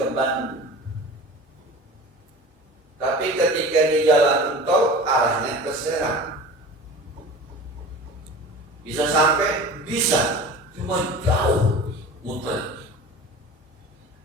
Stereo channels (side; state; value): both; normal; correlation 0.36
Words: Bandung, tapi ketika di jalan tol arahnya ke Serang, bisa sampai? Bisa, cuma jauh muter.